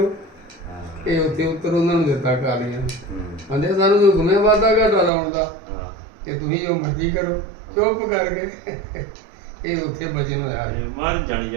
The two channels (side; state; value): left; drops out; at 5.1 s